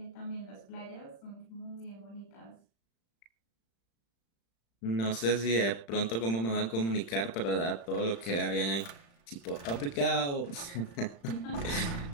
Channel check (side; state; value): right; late; 35 ms